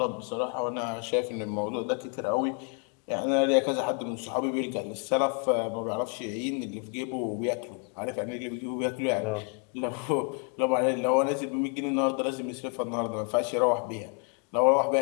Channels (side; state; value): right; quieter; 37.5 dB